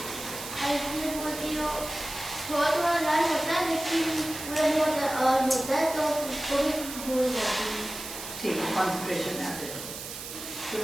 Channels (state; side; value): noise; right; hiss, 9 dB below the sound